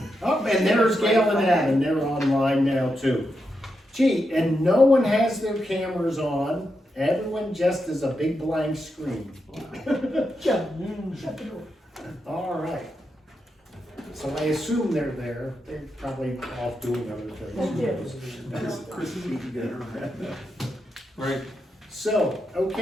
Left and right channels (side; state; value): both; normal; correlation 0.85